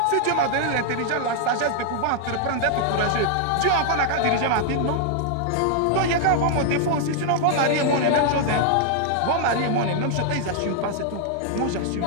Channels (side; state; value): both; different; correlation 0.00